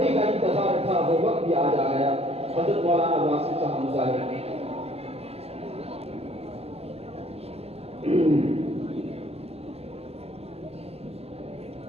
کا انتظار تھا وہ وقت بھی آ جا گیا۔ حضرت مولانا واصف صاحب مظاہر۔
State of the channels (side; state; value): left; late; 0.29 ms